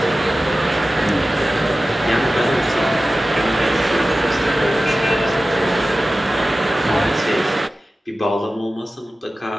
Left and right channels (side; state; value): both; normal; correlation 0.95